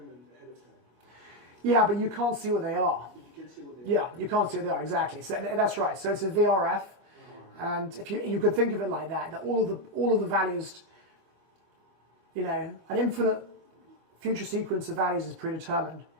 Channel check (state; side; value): late; left; 25 ms